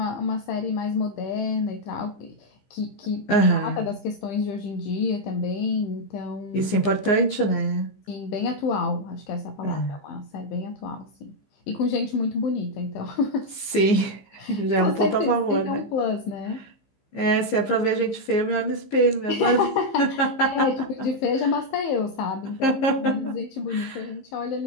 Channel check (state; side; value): late; right; 15 ms